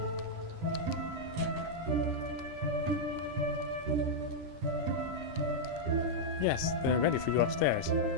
Yes, they're ready for you upstairs.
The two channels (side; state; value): left; late; 9.9 ms